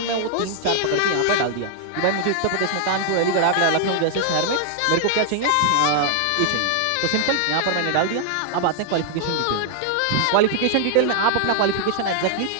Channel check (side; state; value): both; different; correlation 0.00